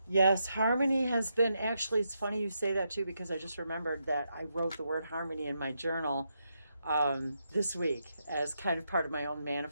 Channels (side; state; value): both; inverted; correlation -0.82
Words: Yes, harmony has been, actually, it's funny you say that too, because I just remembered that I wrote the word harmony in my journal this week as kind of part of my own